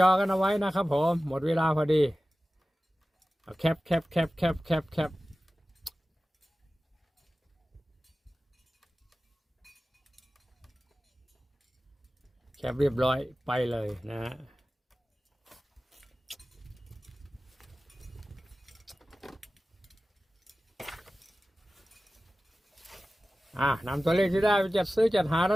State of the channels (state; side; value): normal; both; correlation 0.96